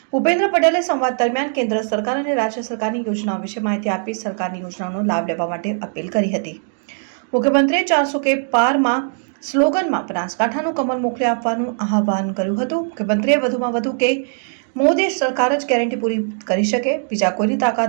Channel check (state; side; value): silent; left; 65 dB below the other